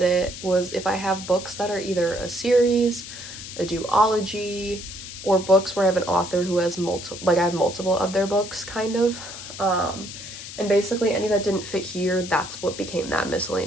it, was if I have books that are either a series, a duology, or books where I have an author who has multiple, like I have multiple of their books, kind of. And basically any that didn't fit here, that's what became that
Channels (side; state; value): left; noise; hiss, 11 dB below the sound